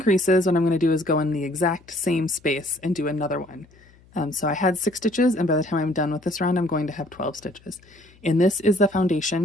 what I'm going to do is go in the exact same space and do another one. So I had 6 stitches, and by the time I'm done with this round, I'm going to have 12 stitches. And this is the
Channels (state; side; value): noise; left; hum, 28 dB below the sound